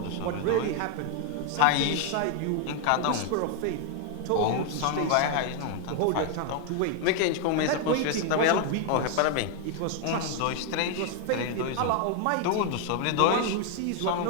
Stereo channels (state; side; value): different; both; correlation 0.00